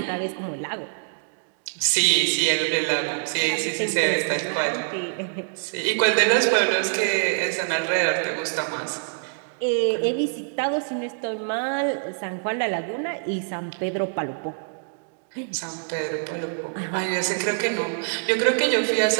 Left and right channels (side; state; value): left; silent; digital silence